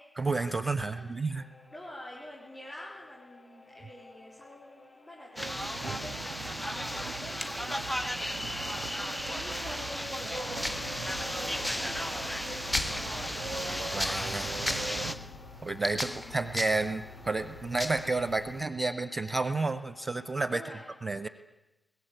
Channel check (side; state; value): both; normal; correlation 0.92